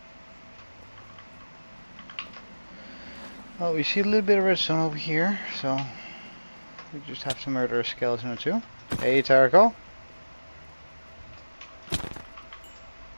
Well, we see a little bit of redstone over here, so we just have to murder a skeleton or two. Hey, Taraco.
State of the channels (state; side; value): inverted; both; correlation -1.00